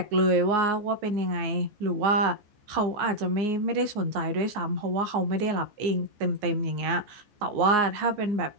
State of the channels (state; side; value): late; left; 14 ms